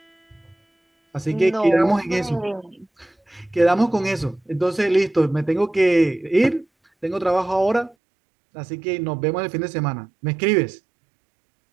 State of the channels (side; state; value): left; drops out; at 8.0 s